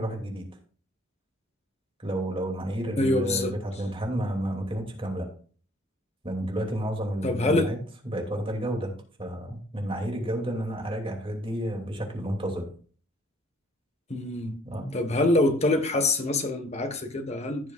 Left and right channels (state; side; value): normal; both; correlation 0.59